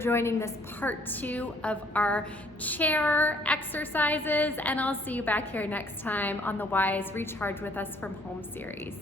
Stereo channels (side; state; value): both; normal; correlation 0.62